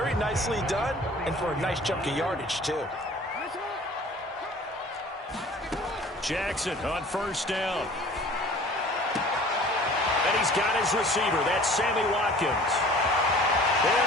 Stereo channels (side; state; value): both; normal; correlation 0.47